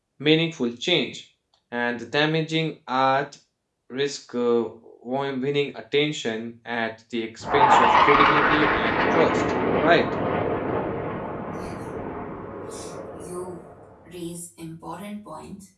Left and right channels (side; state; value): both; identical; correlation 1.00